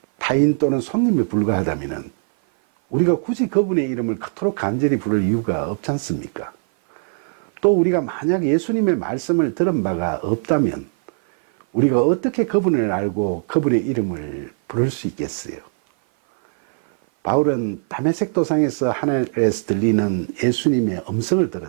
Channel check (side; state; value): left; silent; 57 dB below the other